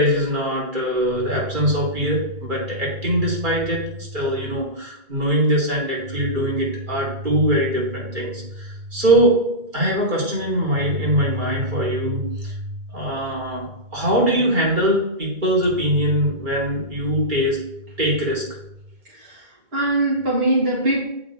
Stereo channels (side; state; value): left; late; 2.2 ms